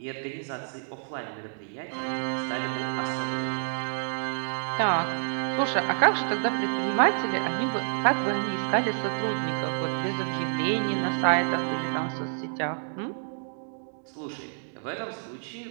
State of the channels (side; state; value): left; silent; digital silence